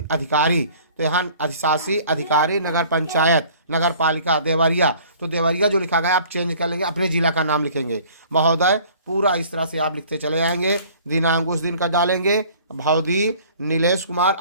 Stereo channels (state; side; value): inverted; both; correlation -0.51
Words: अधिकारी। तो यहाँ अधिशासी अधिकारी नगर पंचायत, नगर पालिका देवरिया। तो देवरिया जो लिखा गया आप चेंज कर लेंगे, अपने जिला का नाम लिखेंगे। महोदय, पूरा इस तरह से आप लिखते चले जाएंगे। दिनांक उस दिन का डालेंगे। भौदी नीलेश कुमार